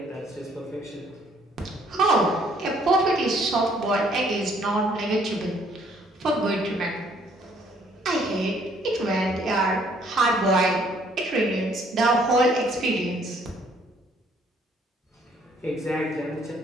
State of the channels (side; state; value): both; normal; correlation 0.63